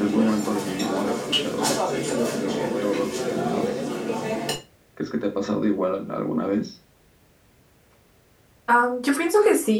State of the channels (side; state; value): both; identical; correlation 1.00